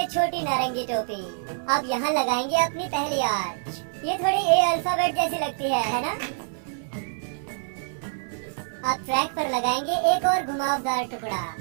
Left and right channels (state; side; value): silent; left; 61 dB below the other